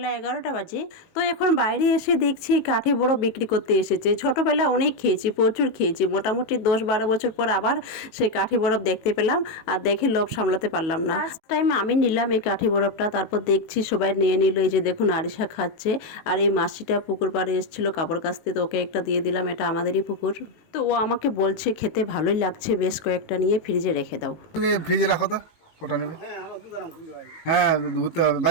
11টা বাজে। তো এখন বাইরে এসে দেখছি কাঠি বড় বিক্রি করতে এসেছে। ছোটবেলা অনেক খেয়েছি, প্রচুর খেয়েছি। মোটামুটি 10-12 বছর পর আবার সেই কাঠি বরফ দেখতে পেলাম, আর দেখে লোভ সামলাতে পারলাম না। ফার্স্ট টাইম আমি নিলাম এই কাঠি বরফটা, তারপর দেখছি সবাই নিয়ে নিল। এই যে দেখুন আরিশা খাচ্ছে, আর এই মাসিটা পুকুর পাড়ে এসেছিল কাপড় কাচতে, তো ওকে একটা দিয়ে দিলাম, এটা আমাদেরই পুকুর। তো ও আমাকে বলছে খেতে ভালোই লাগছে, বেশ কয়েকটা নিয়ে ফ্রিজে রেখে দাও। ফ্রিজে রাখো তো, কটা নেবে? হ্যাঁ, ঘুরতে হবে।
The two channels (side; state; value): right; late; 19 ms